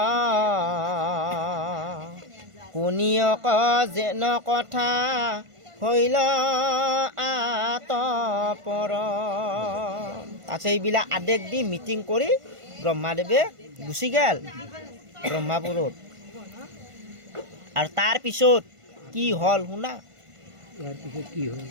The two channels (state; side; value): late; left; 1.5 ms